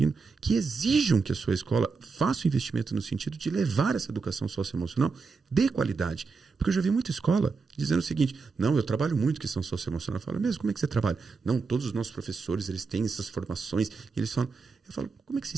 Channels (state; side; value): quieter; left; 4.7 dB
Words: que exijam que a sua escola faça um investimento no sentido de levar essa educação socioemocional de qualidade. Porque eu já vi muita escola dizendo o seguinte, não, eu trabalho muito questão socioemocional. Eu falo, mesmo, como é que você trabalha? Não, todos os nossos professores, eles têm essas formações. E eles falam, eu falo, como é que você